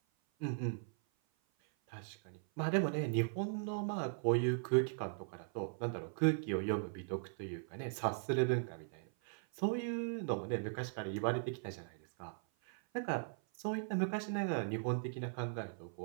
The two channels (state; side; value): silent; left; 52 dB below the other